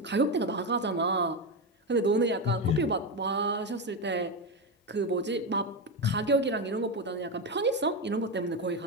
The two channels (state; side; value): normal; both; correlation 0.13